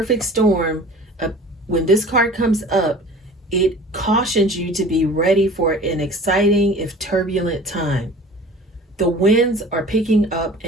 storm, when this card comes up, it cautions you to be ready for an exciting, if turbulent time. The winds are picking up,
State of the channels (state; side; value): normal; both; correlation 0.43